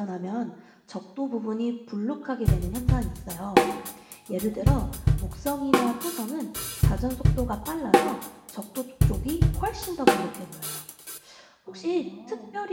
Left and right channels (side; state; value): both; identical; correlation 1.00